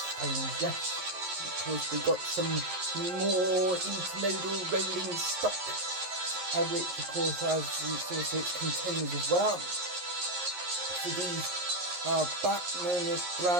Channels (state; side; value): late; left; 11 ms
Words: yes. Of course we got some more intermodal rolling stock, which of course has also its containers as well. So these are Bachmann